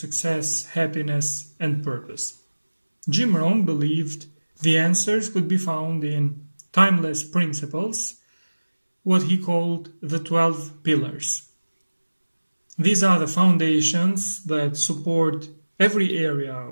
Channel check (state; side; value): inverted; both; correlation -1.00